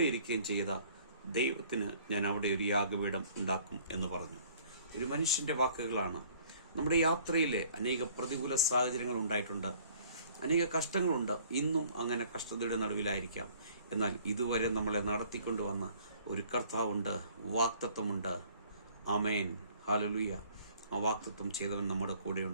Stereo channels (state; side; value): inverted; both; correlation -0.56